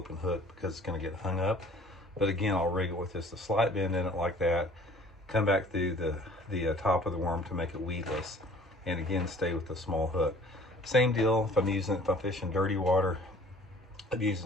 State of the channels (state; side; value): normal; both; correlation 0.52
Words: hook because it's going to get hung up. But again, I'll rig it with just a slight bend in it like that, come back through the top of the worm to make it weedless, and again stay with the small hook. Same deal if I'm fishing dirty water. I'm